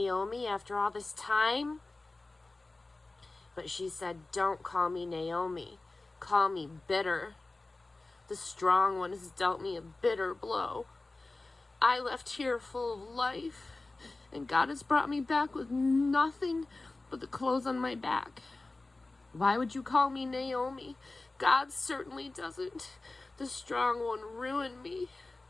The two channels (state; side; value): quieter; right; 3.2 dB